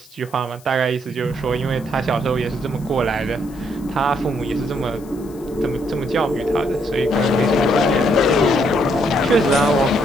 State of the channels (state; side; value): noise; left; hiss, 25 dB below the sound